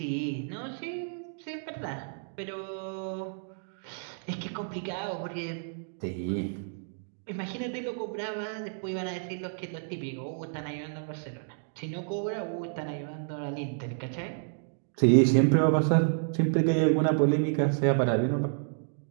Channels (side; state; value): left; silent; digital silence